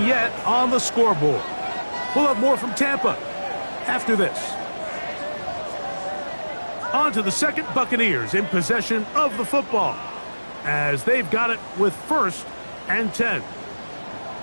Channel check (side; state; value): both; inverted; correlation -1.00